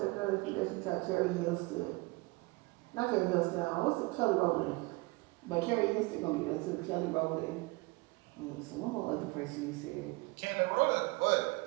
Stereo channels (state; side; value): quieter; left; 24.7 dB